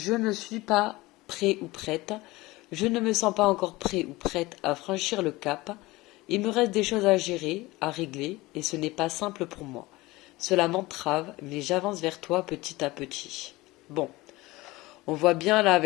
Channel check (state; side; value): quieter; right; 20.4 dB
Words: ne suis pas prêt ou prête. Je ne me sens pas encore prêt ou prête à franchir le cap. Il me reste des choses à gérer, à régler, et ce n'est pas simple pour moi. Cela m'entrave, mais j'avance vers toi petit à petit. Bon, on voit bien là